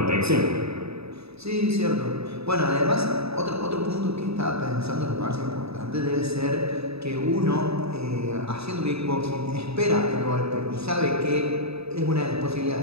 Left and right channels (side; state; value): left; late; 0.78 ms